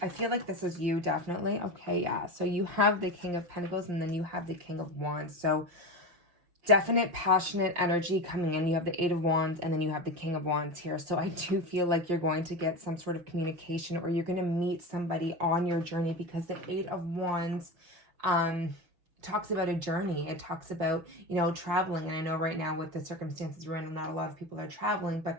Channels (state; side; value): late; left; 6.1 ms